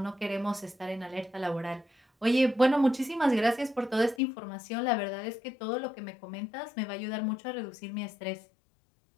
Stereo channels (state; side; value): drops out; right; at 4.2 s